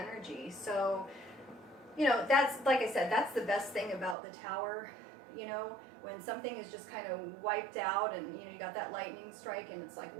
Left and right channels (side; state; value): left; drops out; at 4.2 s